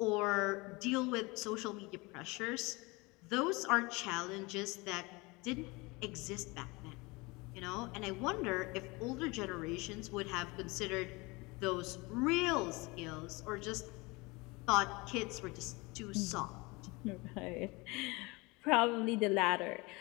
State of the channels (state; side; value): quieter; right; 25.0 dB